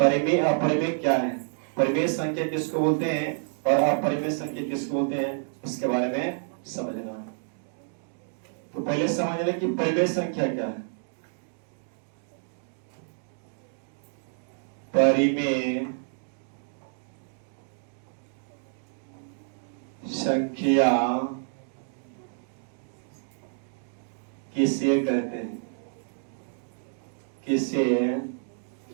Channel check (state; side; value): silent; left; digital silence